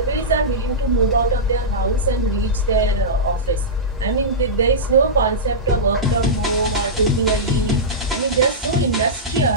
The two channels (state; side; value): normal; both; correlation -0.13